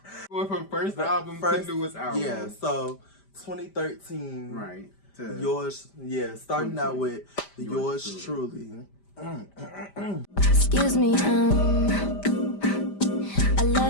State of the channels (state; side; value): late; right; 5.1 ms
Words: from first album to newest album. Yeah, so 2013. Right. Yours, yeah, starting out with yours truly. Excuse me, I